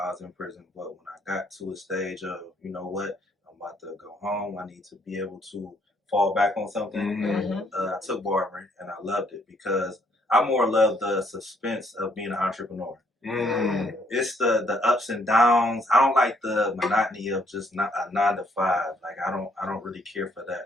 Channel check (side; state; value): both; normal; correlation 0.68